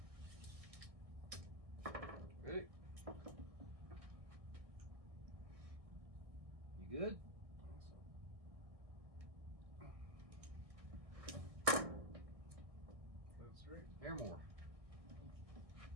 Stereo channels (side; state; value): left; late; 1.6 ms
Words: Ready? You good? That's right. Hair more.